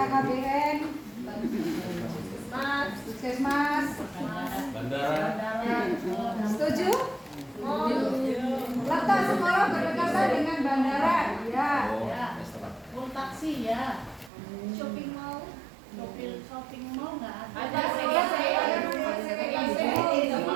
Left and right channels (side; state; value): left; drops out; at 14.3 s